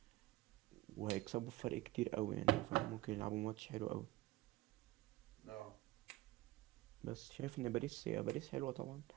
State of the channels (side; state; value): left; quieter; 17.8 dB